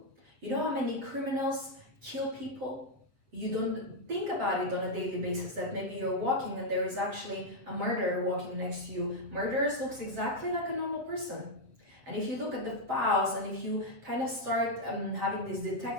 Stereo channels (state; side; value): late; left; 8.1 ms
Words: You know how many criminals kill people? You don't think about it on a daily basis, that maybe you're walking and there is actually a murderer walking next to you. Murderers looks exactly like a normal person. And if you look at the files and if you kind of start having this